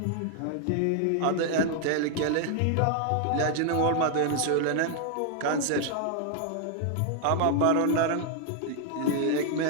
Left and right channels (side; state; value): both; different; correlation 0.00